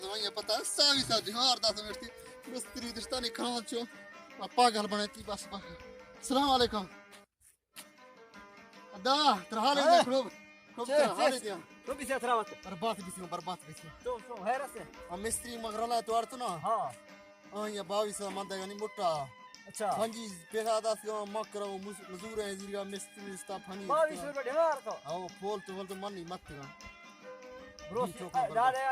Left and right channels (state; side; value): identical; both; correlation 1.00